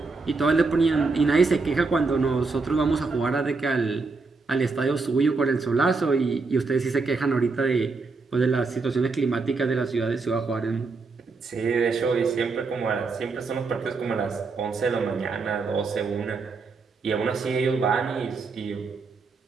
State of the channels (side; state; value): left; quieter; 4.1 dB